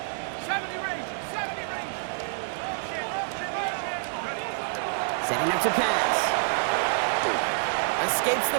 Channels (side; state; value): left; silent; digital silence